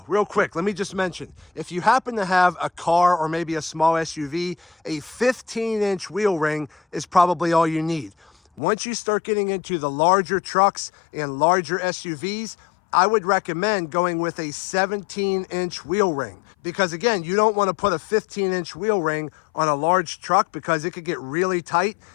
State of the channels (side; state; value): right; drops out; at 8.6 s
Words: real quick, let me just mention, if you happen to have a car or maybe a small SUV, a 15-inch wheel ring is probably all you need. Once you start getting into the larger trucks and larger SUVs, I would recommend going with a 17-inch wheel ring. Because again, you don't want to put a 15-inch wheel ring on a large truck because it could get really tight